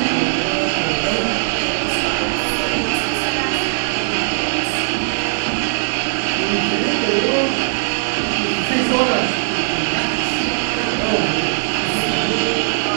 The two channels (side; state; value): left; silent; digital silence